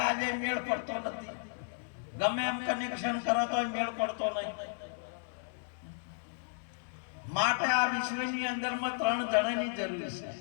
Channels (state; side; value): silent; right; digital silence